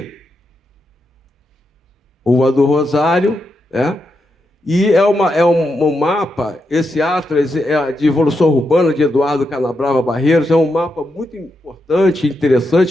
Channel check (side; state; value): both; normal; correlation 0.84